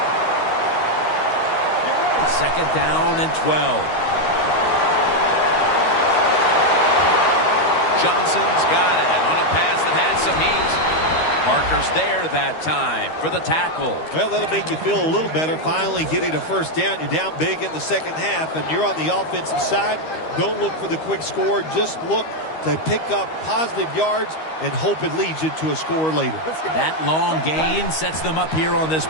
Second down and 12. Johnson's got it on a pass that had some heat. Parker's there that time for the tackle. Well, that'll make you feel a little better. Finally getting a first down. You're down big in the second half, and you're on the offensive side. Don't look for the quick score. Just look to pick up positive yards and hope it leads you to a score later. That long gain sets them up here on this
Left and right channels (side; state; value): right; late; 13 ms